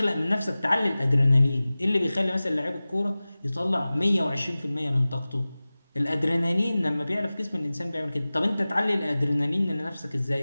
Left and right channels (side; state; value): both; inverted; correlation -0.98